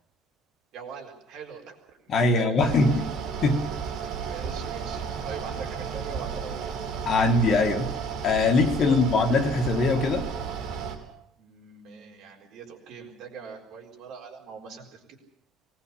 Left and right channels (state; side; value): normal; both; correlation 0.56